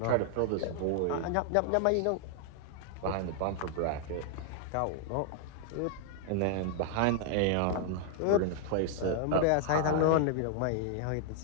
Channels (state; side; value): different; both; correlation 0.00